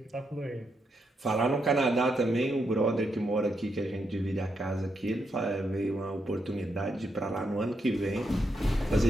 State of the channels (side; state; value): both; normal; correlation 0.81